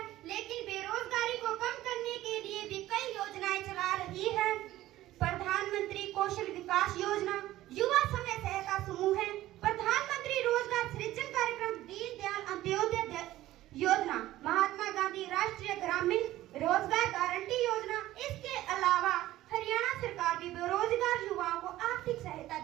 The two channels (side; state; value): left; quieter; 15.3 dB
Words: लेकिन बेरोजगारी को कम करने के लिए भी कई योजनाएं चला रही है। प्रधानमंत्री कौशल विकास योजना, युवा समय सहायता समूह है, प्रधानमंत्री रोजगार सृजन कार्यक्रम, दीनदयाल अंत्योदय योजना, महात्मा गांधी राष्ट्रीय ग्रामीण रोजगार गारंटी योजना। इसके अलावा हरियाणा सरकार भी बेरोजगार युवाओं को आर्थिक सहायता